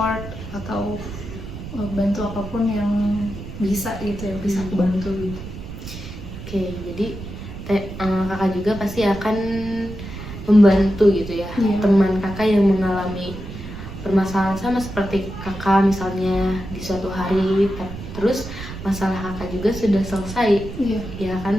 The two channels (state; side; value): noise; right; rumble, 11 dB below the sound